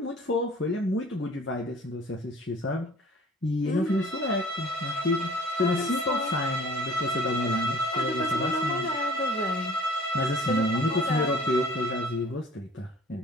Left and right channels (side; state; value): both; normal; correlation 0.50